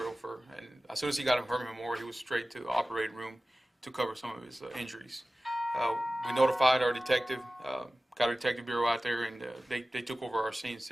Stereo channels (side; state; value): both; normal; correlation 0.97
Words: and as soon as he got to Herman Memorial, he was straight to the operating room to cover some of his injuries. We notified our detective, got a detective bureau out there, and they took over our scene